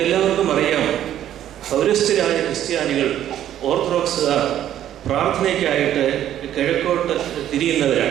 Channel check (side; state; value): left; quieter; 11.4 dB